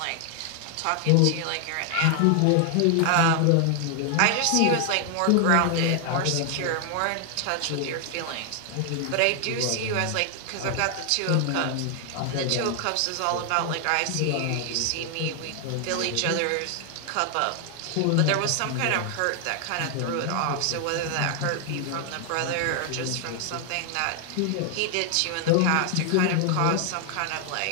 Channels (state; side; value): different; both; correlation 0.00